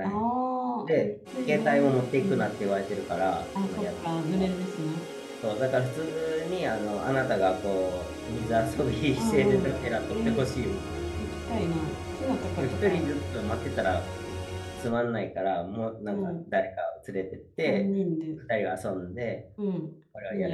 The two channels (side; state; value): both; identical; correlation 1.00